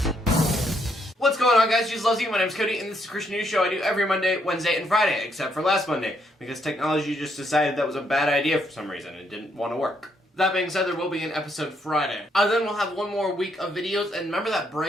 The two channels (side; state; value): both; normal; correlation 0.74